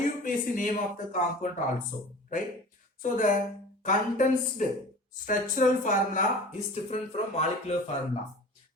name of the compound also, right? So the condensed structural formula is different from molecular formula.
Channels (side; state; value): both; normal; correlation 0.40